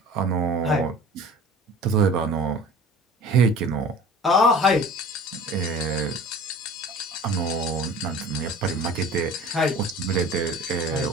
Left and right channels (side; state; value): both; normal; correlation 0.42